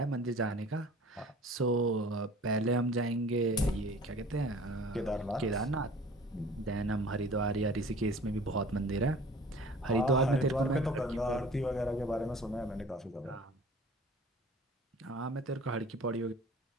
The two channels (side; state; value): both; normal; correlation 0.46